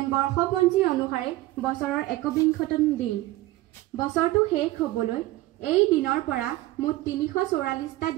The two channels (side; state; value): left; quieter; 17.7 dB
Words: বৰ্ষপঞ্জী অনুসাৰে বছৰৰ 21তম দিন। বছৰটো শেষ হ'বলৈ এই দিনৰ পৰা মুঠ 344টা